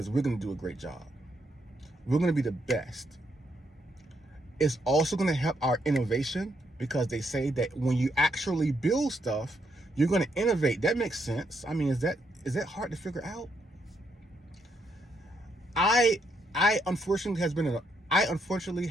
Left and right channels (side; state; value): both; normal; correlation 0.76